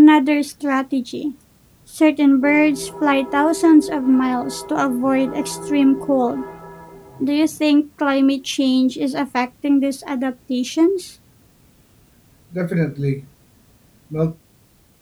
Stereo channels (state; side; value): identical; both; correlation 1.00